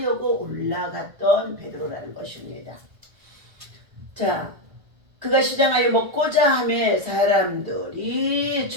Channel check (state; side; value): late; left; 1.5 ms